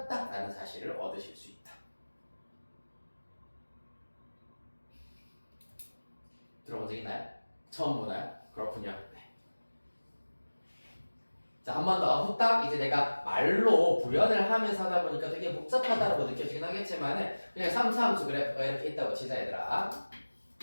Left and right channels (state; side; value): inverted; both; correlation -1.00